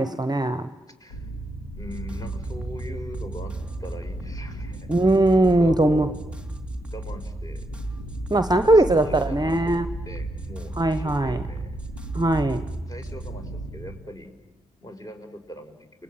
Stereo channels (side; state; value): both; normal; correlation 0.81